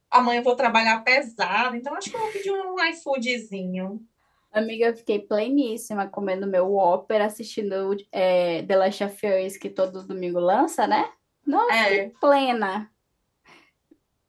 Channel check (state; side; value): identical; both; correlation 1.00